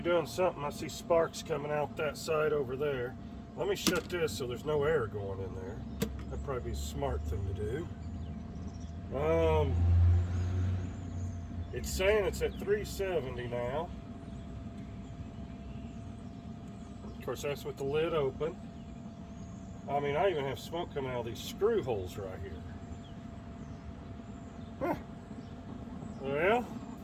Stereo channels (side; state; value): both; identical; correlation 1.00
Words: something. I see sparks coming out that side over there. Let me shut this so there's no air going in there. That'd probably be a smart thing to do. It's saying it's at 370 now. Of course, that's with the lid open. I mean, I even have smoke coming out of these screw holes right here. Huh. Well,